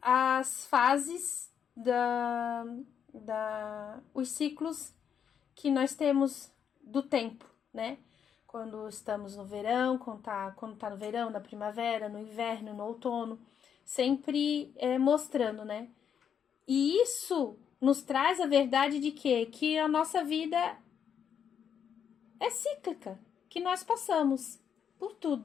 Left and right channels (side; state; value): right; quieter; 8.0 dB